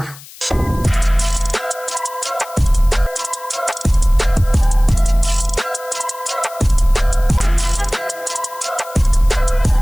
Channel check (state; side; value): noise; left; hiss, 19 dB below the sound